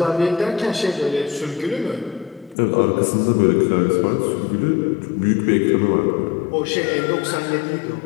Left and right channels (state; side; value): drops out; right; at 2.6 s